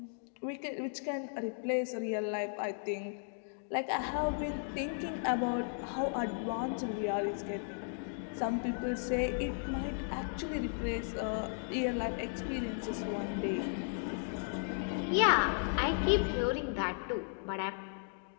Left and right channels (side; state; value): right; silent; digital silence